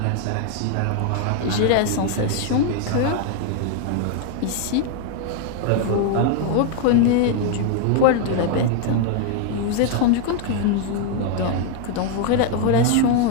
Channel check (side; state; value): both; different; correlation 0.00